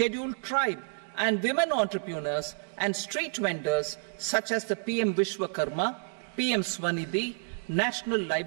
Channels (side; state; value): left; silent; digital silence